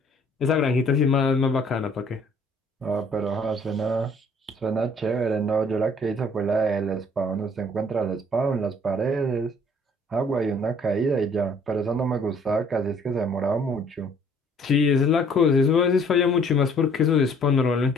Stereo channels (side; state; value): both; normal; correlation 0.59